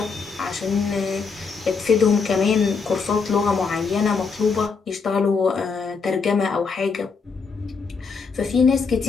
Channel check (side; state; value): right; quieter; 5.1 dB